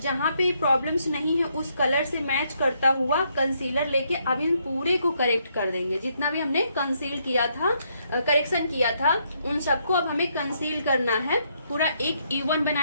जहाँ पे प्रॉब्लम्स नहीं है उस कलर से मैच करता हुआ कंसीलर लेके अब इन पूरे को करेक्ट कर देंगे। जितना भी हमने कंसील किया था, करेक्शन किया था, उन सबको अब हमें कंसील करना है, पूरा एक इवन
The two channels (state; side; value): inverted; both; correlation -0.74